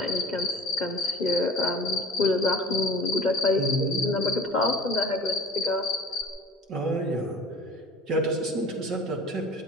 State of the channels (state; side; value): normal; both; correlation 0.41